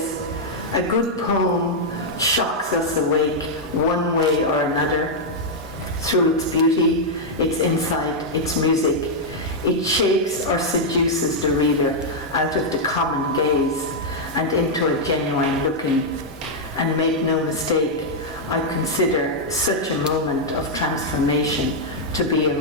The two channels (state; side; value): normal; both; correlation -0.04